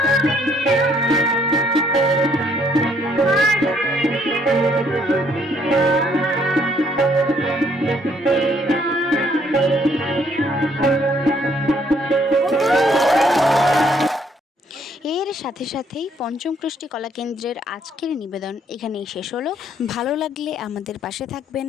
সাথে সাথেই পঞ্চম কৃষ্টি কলা কেন্দ্রের আজকের নিবেদন এখানেই শেষ হলো। ভালো লাগলে আমাদের পাশে থাকবেন।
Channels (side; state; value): both; normal; correlation 0.66